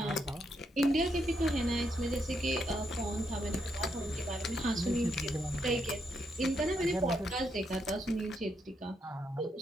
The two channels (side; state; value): both; normal; correlation 0.79